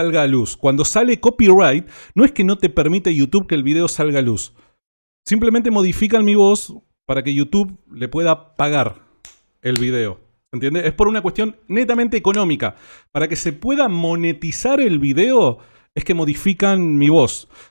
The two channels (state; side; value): inverted; both; correlation -1.00